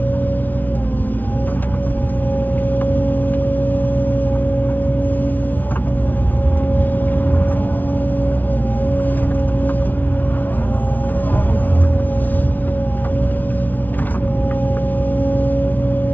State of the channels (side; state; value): right; late; 0.080 ms